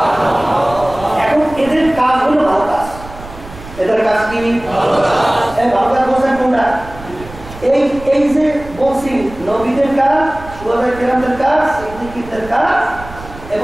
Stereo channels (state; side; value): noise; right; rumble, 16 dB below the sound